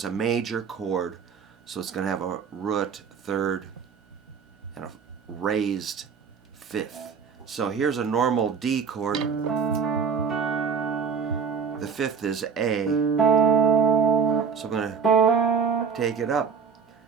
a major chord, so it's going to have a root third and a raised fifth. So here's a normal D chord. The fifth is A. So I'm going to take it up.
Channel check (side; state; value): left; quieter; 6.1 dB